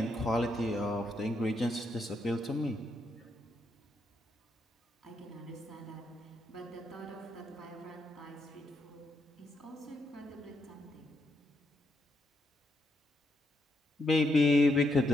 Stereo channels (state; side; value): normal; both; correlation 0.79